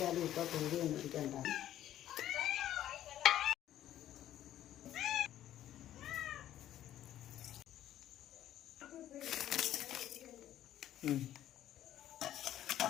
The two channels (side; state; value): right; quieter; 12.3 dB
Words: ഇപ്പൊ കൂടി മേടിക്കണ്ട.